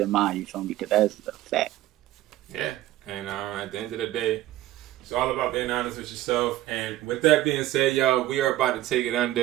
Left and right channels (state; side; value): quieter; left; 15.0 dB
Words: mind, you feel me? Because that's a fact. Yeah, and at the end of the day, it's all about being honest with yourself. And with that being said, y'all, we are about to take it